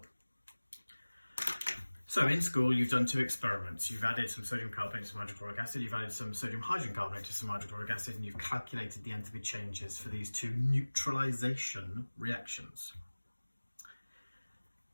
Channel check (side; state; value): both; inverted; correlation -1.00